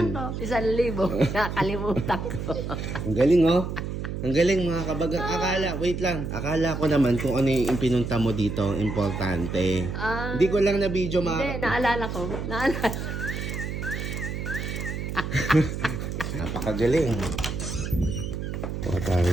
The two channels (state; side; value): noise; right; hum, 5 dB below the sound